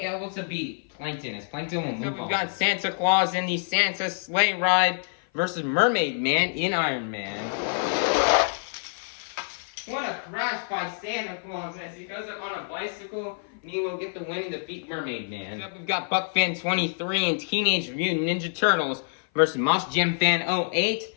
able to beat Plankton, as Plankton will move on. We've got Santa Claus in the Santa Sleigh Ride versus Mermaid Man in Iron Man. What a crash by Santa Claus, as he goes up on a bicycle and he will get the win and defeat Mermaid Man. Next up, we've got BuckFan 23 and Teenage Mutant Ninja Turtles versus Moss Gem Fan 08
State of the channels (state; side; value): silent; right; 55 dB below the other